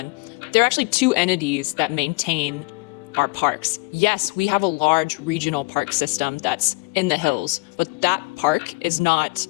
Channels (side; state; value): right; quieter; 27.2 dB